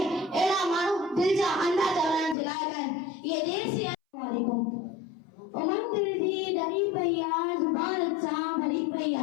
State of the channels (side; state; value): right; drops out; at 2.4 s